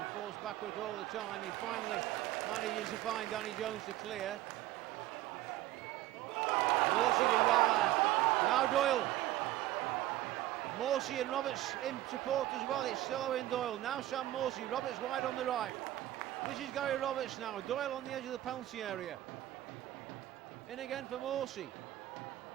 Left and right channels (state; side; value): quieter; left; 15.0 dB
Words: forced backwards all the time. He finally manages to find Danny Jones to clear. Morsey did well there. Now Doyle. Morsey and Roberts in support as well. It's still Owen Doyle. Now Sam Morsey. Roberts wide on the right. This is Gary Roberts now. Doyle on the edge of the penalty area. In again for Morsey.